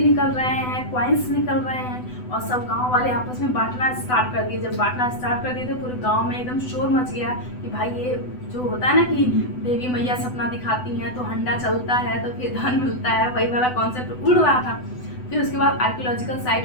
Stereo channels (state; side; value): late; right; 8.0 ms